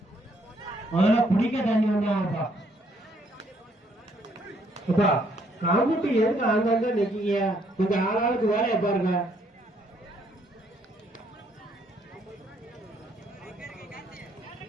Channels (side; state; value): both; normal; correlation 0.69